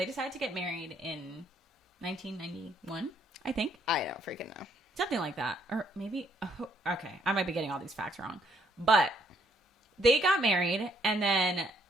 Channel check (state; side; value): normal; both; correlation 0.68